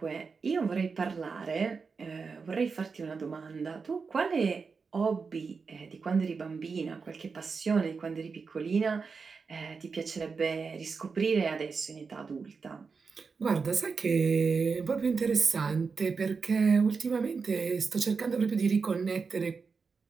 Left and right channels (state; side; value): quieter; left; 5.0 dB